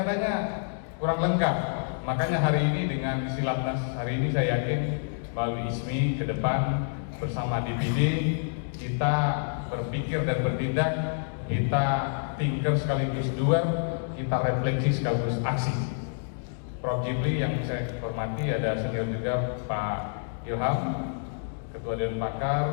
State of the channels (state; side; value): silent; right; digital silence